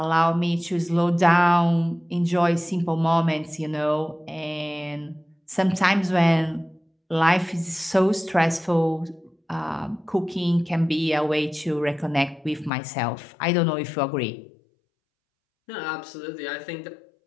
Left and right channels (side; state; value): right; drops out; at 12.7 s